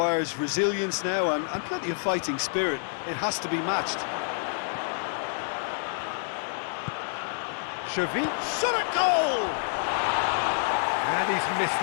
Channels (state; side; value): silent; right; 59 dB below the other